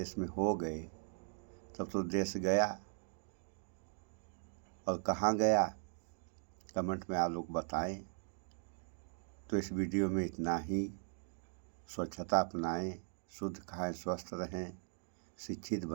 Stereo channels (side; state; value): left; silent; 52 dB below the other